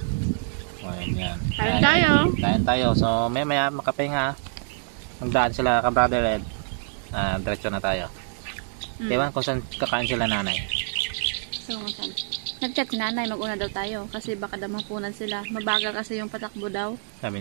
Yan. Kain tayo. So maya makapahinga. Magdaan sila ka-brother Ed. Diretso na tayo. Ewan kung saan kakain sila nanay. So, nag-chat si nanay, mag-una daw tayo. Kasi baka daw mapunan sila. Mabagal kasi yung patakbo daw. Sabi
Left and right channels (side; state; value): left; silent; digital silence